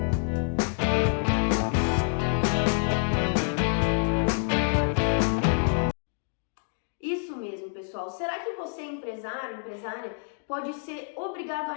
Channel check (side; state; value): right; silent; 59 dB below the other